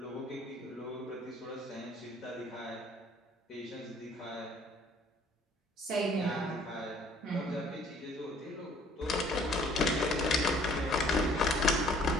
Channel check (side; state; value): both; normal; correlation 0.58